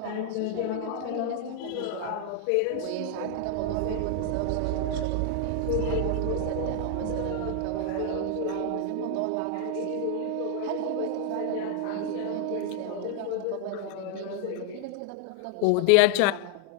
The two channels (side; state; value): both; different; correlation 0.00